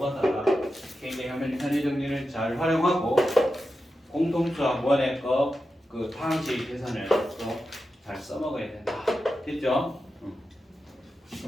굉장히 현의 정리를 잘 활용하고 공통수학 원의 그 방식 계산을 또 잘 써먹어야 된다. 됐죠?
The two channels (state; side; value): normal; both; correlation 0.90